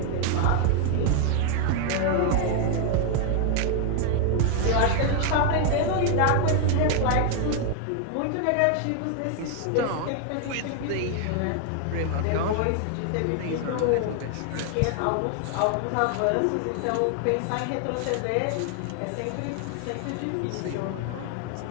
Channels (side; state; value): both; different; correlation 0.00